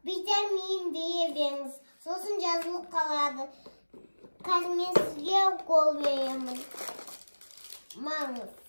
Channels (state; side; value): inverted; both; correlation -1.00